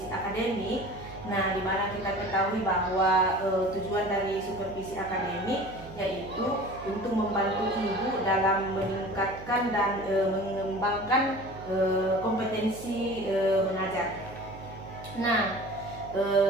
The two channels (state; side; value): noise; right; hum, 15 dB below the sound